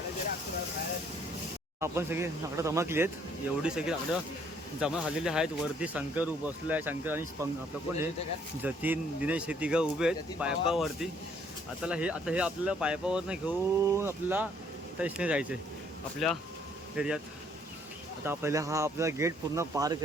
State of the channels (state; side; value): normal; both; correlation 0.64